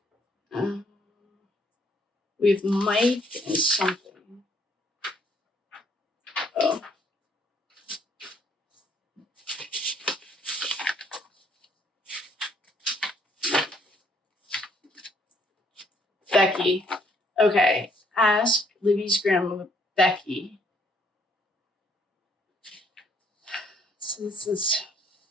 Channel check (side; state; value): both; normal; correlation 0.66